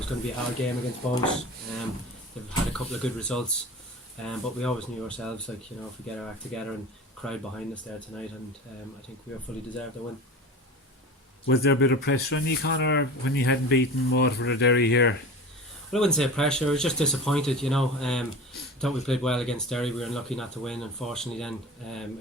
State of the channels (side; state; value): both; normal; correlation 0.34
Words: going to be a hard game against Bows. They've had a couple of good results, but we always knew ourselves, if we get our act together and crowd behind us there tonight, and I think we fully deserved the win. Was there a bit of pressure on you, Conor, when you hadn't beaten Waterford or Derry here? Well, I wouldn't say pressure. I was just disappointed. Thought we played well against Derry. We were unlucky not to win. Unfortunately, then